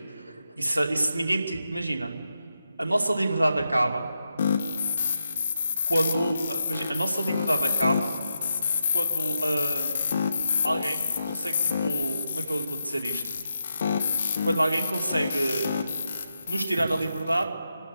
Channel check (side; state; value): both; inverted; correlation -0.86